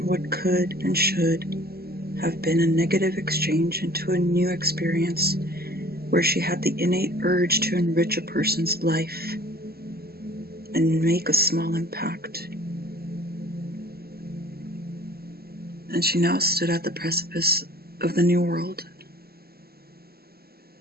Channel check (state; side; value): late; left; 0.45 ms